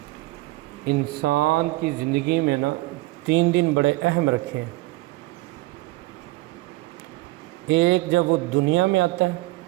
انسان کی زندگی میں نا 3 دن بڑے اہم رکھے ہیں۔ ایک جب وہ دنیا میں آتا ہے،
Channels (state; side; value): quieter; left; 20.2 dB